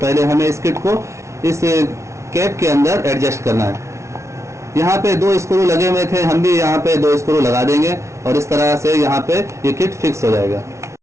हमें इस किट को इस कैप के अंदर एडजस्ट करना है। यहाँ पे 2 स्क्रू लगे हुए थे, हम भी यहाँ पे 2 स्क्रू लगा देंगे और इस तरह से यहाँ पे ये किट फिक्स हो जाएगा।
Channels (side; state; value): left; late; 0.14 ms